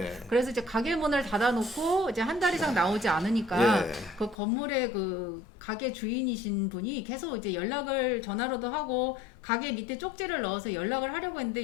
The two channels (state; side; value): drops out; right; at 4.4 s